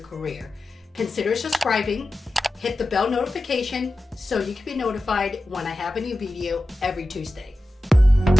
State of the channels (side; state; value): both; normal; correlation 0.93